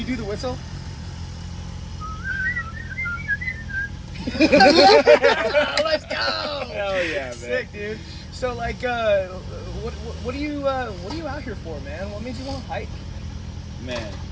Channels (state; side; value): identical; both; correlation 1.00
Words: do the whistle? Let's go! Hell yeah, man. Sick, dude. So, like, what are you out here for, man? What made you want to hike? Man.